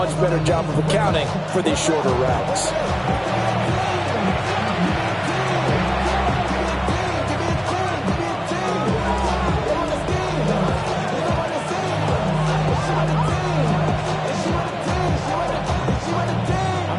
better job of accounting for these shorter routes.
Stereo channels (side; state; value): both; identical; correlation 1.00